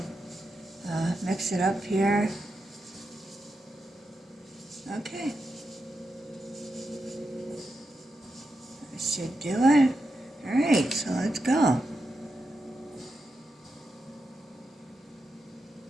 mix it up here. Okay. That should do it. Alright, so let's go.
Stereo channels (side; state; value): both; normal; correlation 0.87